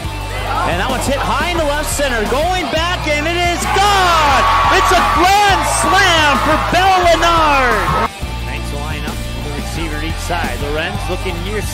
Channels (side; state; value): both; identical; correlation 1.00